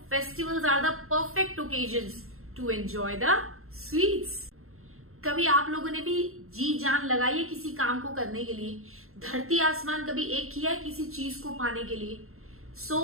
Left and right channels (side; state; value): left; late; 0.62 ms